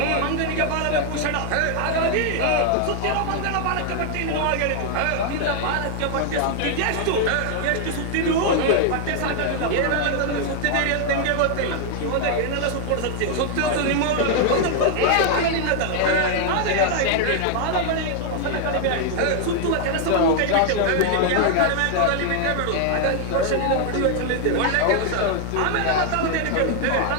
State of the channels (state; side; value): different; both; correlation 0.00